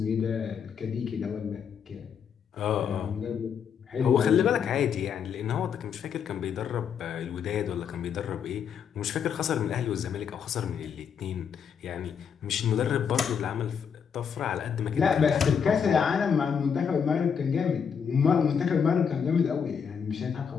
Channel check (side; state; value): right; quieter; 7.1 dB